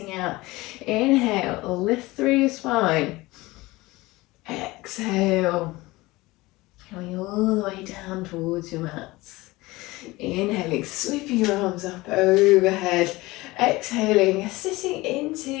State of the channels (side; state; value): right; quieter; 20.6 dB